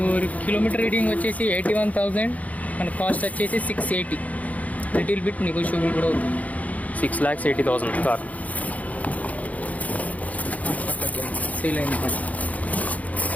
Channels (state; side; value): late; right; 0.072 ms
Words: కిలోమీటర్ రీడింగ్ వచ్చేసి 81,000. మన కాస్ట్ వచ్చేసి 680. లిటిల్ బిట్ నెగోషియబుల్ కూడా అవుతుంది. 6,80,000 కార్. సేల్ అయింది.